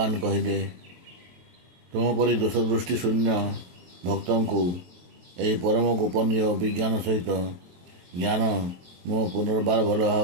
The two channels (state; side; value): late; left; 23 ms